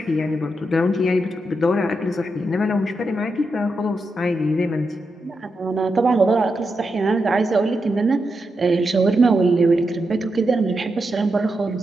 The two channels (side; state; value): both; normal; correlation 0.86